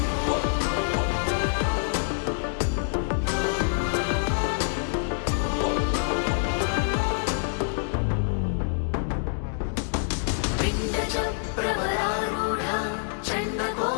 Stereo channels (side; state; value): right; silent; digital silence